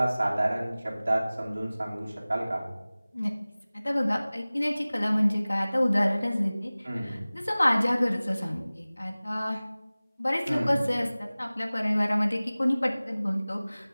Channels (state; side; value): inverted; both; correlation -0.99